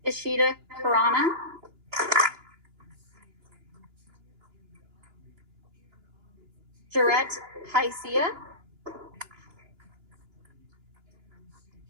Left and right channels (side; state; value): left; late; 2.9 ms